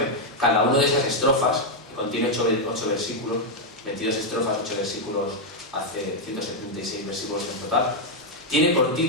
cada una de esas estrofas, que contiene 8 versículos, 22 estrofas, 8 versículos, hace 176 versículos en total, tiene por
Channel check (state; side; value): normal; both; correlation 0.00